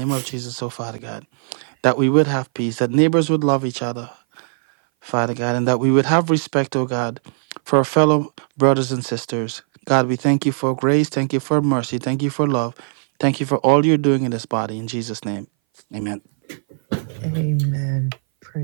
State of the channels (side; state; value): left; silent; 60 dB below the other